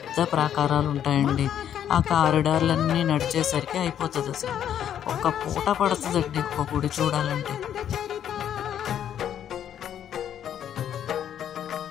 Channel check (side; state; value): right; quieter; 9.8 dB